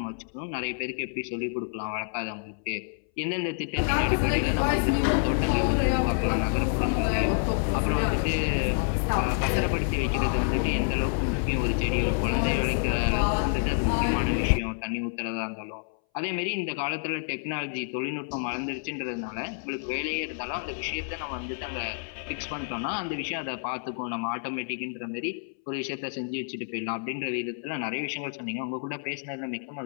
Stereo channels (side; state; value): right; silent; 59 dB below the other